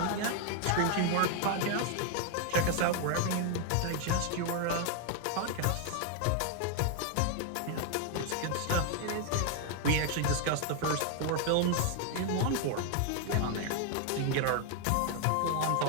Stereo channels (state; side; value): different; both; correlation 0.00